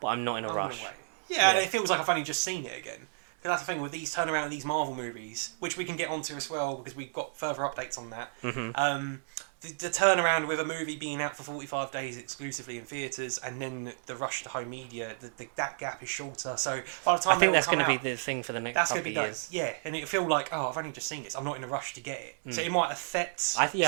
I'm not in a rush. Yeah, and it feels like I've only just seen it again. Because that's the thing with these turnaround of these Marvel movies, which we can get onto as well because we've got further updates on that. The turnaround with a movie being out for 45 days exclusively in theatres, and then the rush to home media, that gap is shorter. So by the time I think that's going to be the thing for the next couple of years. Yeah, and it'll feel like, I've only just seen this. I'm not in a rush to get it. So it might affect some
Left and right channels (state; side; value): silent; left; 57 dB below the other